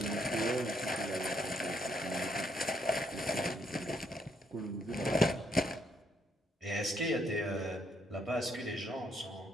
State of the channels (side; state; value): both; normal; correlation 0.73